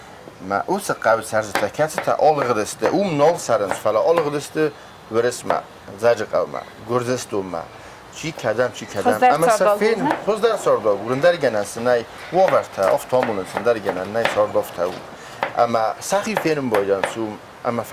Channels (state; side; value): identical; both; correlation 1.00